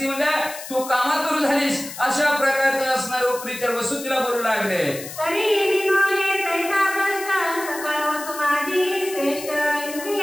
म्हणजे तू कामातूर झालीस अशा प्रकारचं असणारे उपरीच्या वसू तिला बोलू लागले. तरी विनोहे तैसा भ्रष्ट सकळ वसु माझी श्रेष्ठ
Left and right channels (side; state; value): left; noise; hiss, 12 dB below the sound